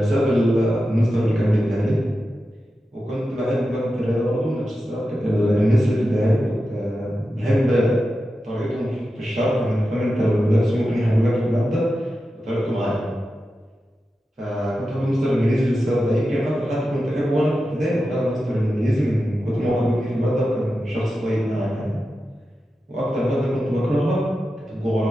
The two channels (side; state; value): both; normal; correlation 0.91